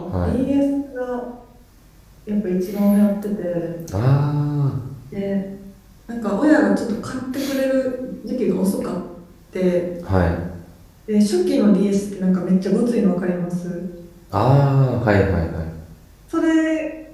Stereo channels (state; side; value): identical; both; correlation 1.00